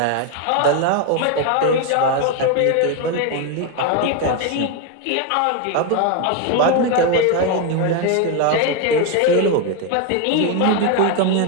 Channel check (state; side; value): different; both; correlation 0.02